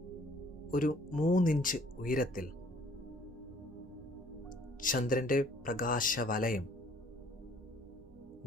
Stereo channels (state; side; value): normal; both; correlation 0.58